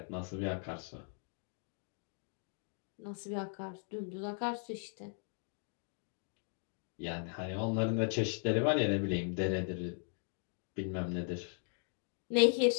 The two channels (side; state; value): right; silent; 52 dB below the other